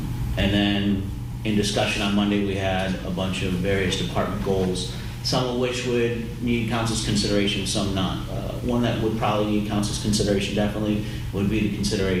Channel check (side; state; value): both; identical; correlation 1.00